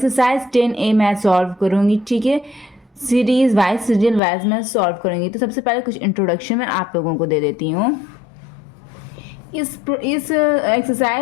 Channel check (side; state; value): right; drops out; at 4.2 s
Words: 10A मैं सॉल्व करूँगी, ठीक है, सीरीज वाइज सीरियल वाइज मैं सॉल्व करूँगी। तो सबसे पहले कुछ इंट्रोडक्शन मैं आप लोगों को दे देती हूँ। इस